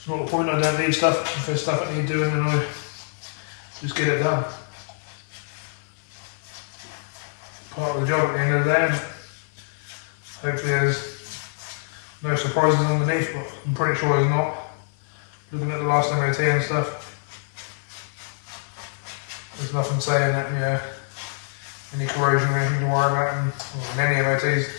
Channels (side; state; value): right; silent; 56 dB below the other